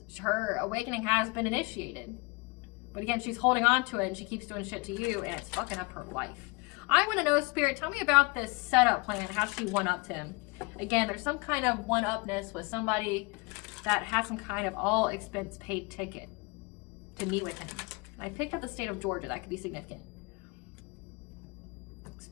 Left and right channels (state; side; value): quieter; right; 27.3 dB